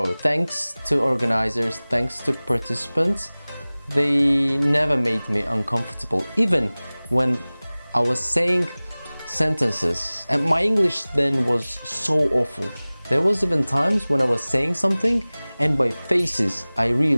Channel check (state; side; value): inverted; both; correlation -0.99